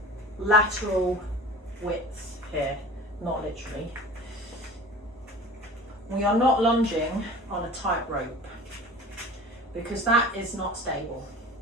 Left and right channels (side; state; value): both; normal; correlation 0.40